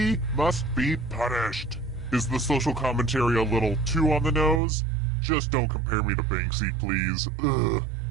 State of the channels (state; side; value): drops out; left; at 4.6 s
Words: must be punished. Is the social commentary a little too on the nose? Just don't compare me to Banksy, please. Ugh,